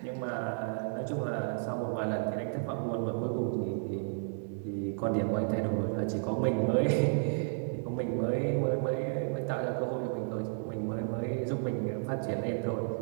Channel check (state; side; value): silent; left; digital silence